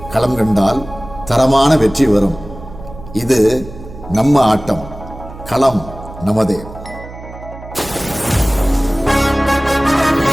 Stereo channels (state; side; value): noise; right; hum, 15 dB below the sound